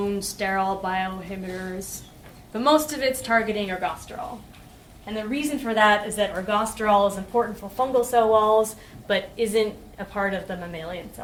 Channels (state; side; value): identical; both; correlation 1.00